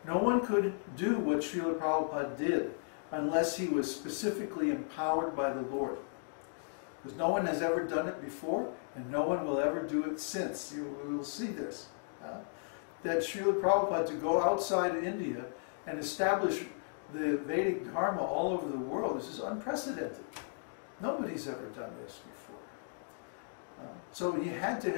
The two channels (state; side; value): silent; right; digital silence